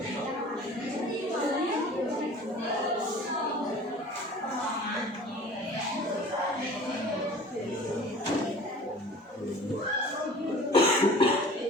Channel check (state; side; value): normal; both; correlation 0.43